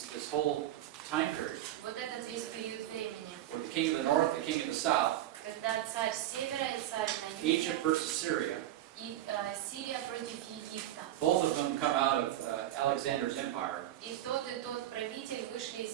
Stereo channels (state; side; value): quieter; left; 13.2 dB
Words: this whole time period вот этот весь период времени, where the king of the north, the king of the south, когда царь с севера и царь на юге, Egypt versus Syria, и Сирия против Египта. both of them come out of Alexander's empire. И тот правитель вышли